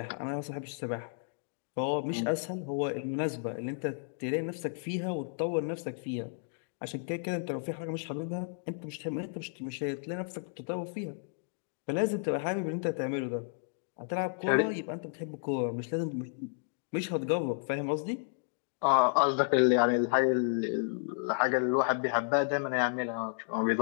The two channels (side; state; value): right; silent; digital silence